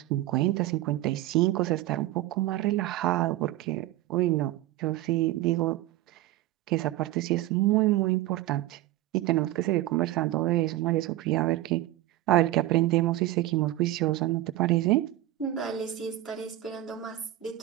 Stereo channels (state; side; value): quieter; left; 15.5 dB